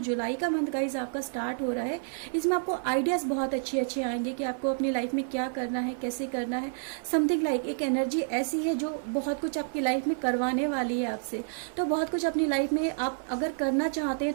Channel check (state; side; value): silent; left; 58 dB below the other